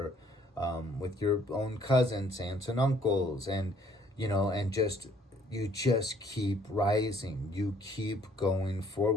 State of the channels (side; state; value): both; normal; correlation 0.62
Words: with your own cousins, aunts and uncles, and, you know, and just, you just keep rising. You keep going